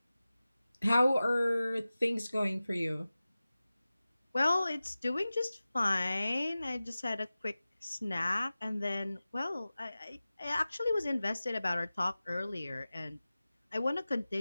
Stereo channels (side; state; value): both; inverted; correlation -0.97